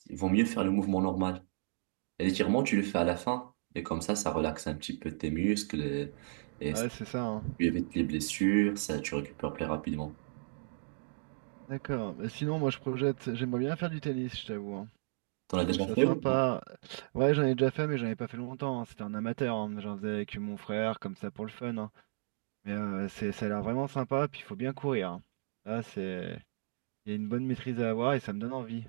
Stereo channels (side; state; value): left; silent; digital silence